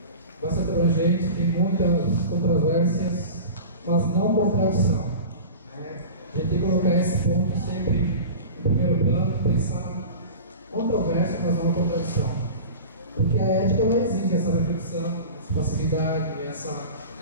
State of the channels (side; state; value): both; inverted; correlation -0.34